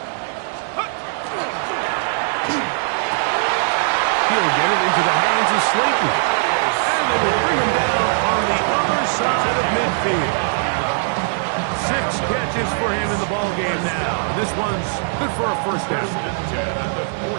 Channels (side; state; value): left; silent; digital silence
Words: He'll get it into the hands of Slayton. And they will bring him down on the other side of midfield. 6 catches for him in the ball game now. And this one's good for a first down. First and 10 at the